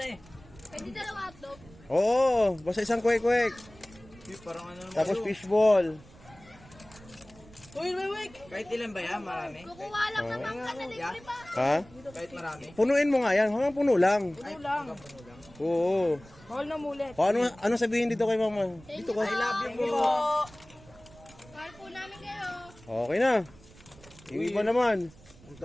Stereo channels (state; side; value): noise; right; rumble, 23 dB below the sound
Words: Pwede dalawa hotdog. Oo, basta isang quick. Parang ano naman. Tapos fishball. Uy, wait. Kahit ilan ba yan? Marami? Kukuha lang naman ka na libre pa. Ha? Kahit marami? Punuin mo nga yan, hanggang puno lang. Ay, lang. puno lang. Oo. Bawal na mulit. O, ano sabihin dito kay Mama? Dito ka. I love you po. Mahal po namin kayo. Okay na. Yung iba naman. Ang